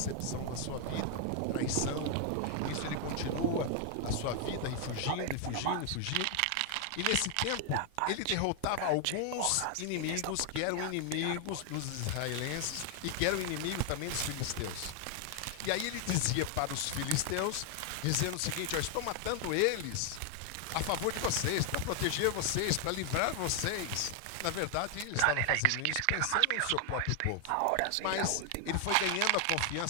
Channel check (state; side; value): different; both; correlation 0.00